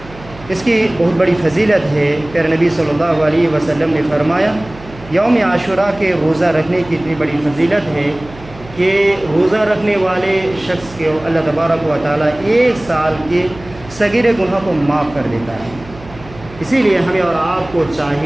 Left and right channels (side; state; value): right; noise; hum, 19 dB below the sound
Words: اس کی بہت بڑی فضیلت ہے۔ پیارے نبی صلی اللہ علیہ وسلم نے فرمایا یوم عاشوراء کے روزہ رکھنے کی اتنی بڑی فضیلت ہے کہ روزہ رکھنے والے شخص کے اللہ تبارک و تعالیٰ 1 سال کے صغیر گناہ کو معاف کر دیتا ہے۔ اسی لیے ہمیں اور آپ کو